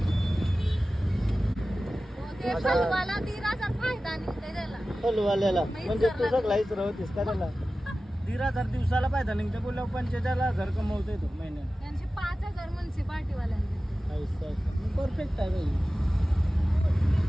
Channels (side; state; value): both; normal; correlation 0.95